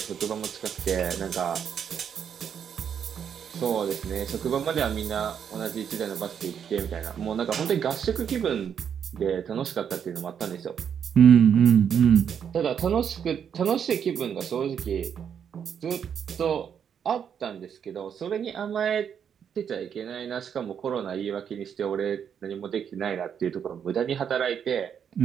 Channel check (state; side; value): quieter; left; 8.0 dB